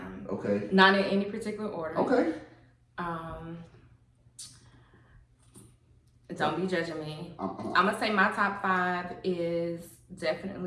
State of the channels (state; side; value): identical; both; correlation 1.00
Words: Okay. Not in any particular order. Okay. Don't be judging me. I'm gonna say my top 5 is